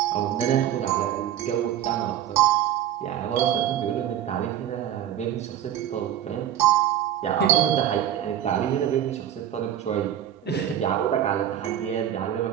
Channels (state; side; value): quieter; left; 10.9 dB